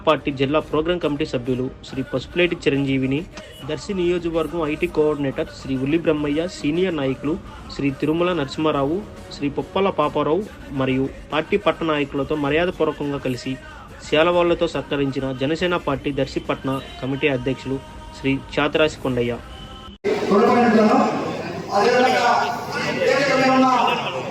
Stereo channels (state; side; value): identical; both; correlation 1.00